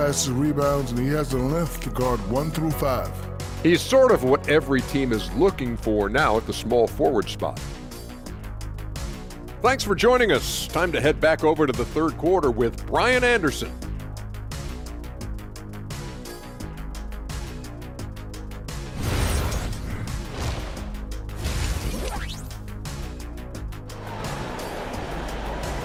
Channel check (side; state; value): both; identical; correlation 1.00